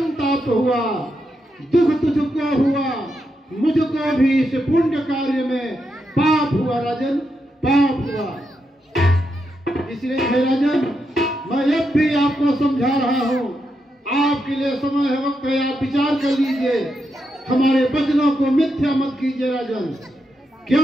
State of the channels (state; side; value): normal; both; correlation 0.84